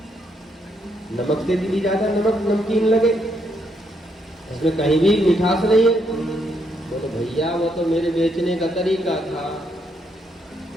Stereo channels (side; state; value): both; normal; correlation 0.75